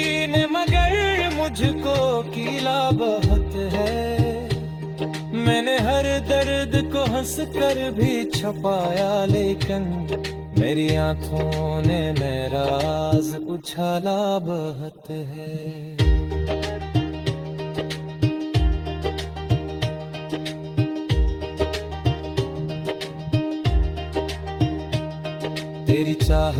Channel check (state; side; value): identical; both; correlation 1.00